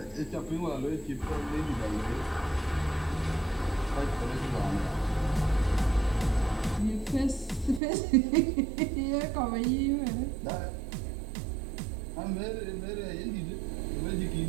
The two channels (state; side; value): drops out; left; at 7.8 s